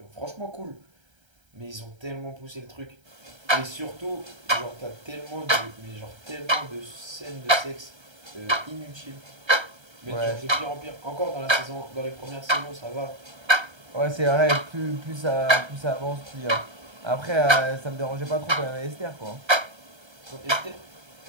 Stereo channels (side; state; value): left; late; 1.3 ms